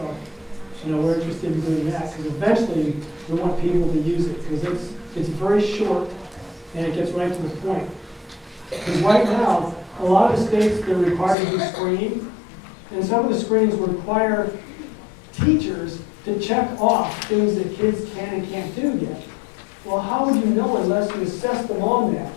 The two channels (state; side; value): drops out; right; at 11.4 s